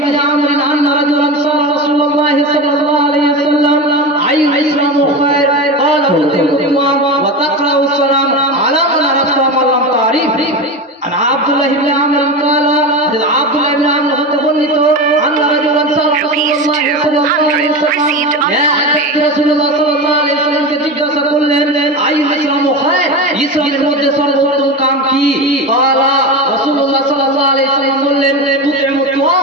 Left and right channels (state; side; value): normal; both; correlation 0.23